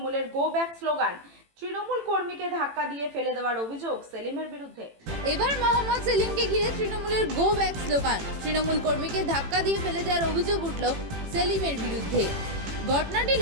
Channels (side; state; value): left; late; 18 ms